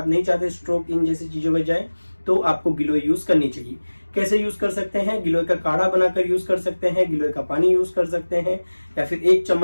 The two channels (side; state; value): both; inverted; correlation -1.00